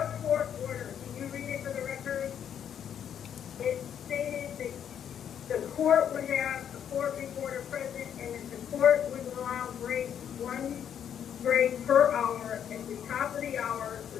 court order, can you read it for the record? It stated that the court would have a court reporter present, and that the court would allow breaks, one break per hour at the top of the hour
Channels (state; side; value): quieter; right; 9.0 dB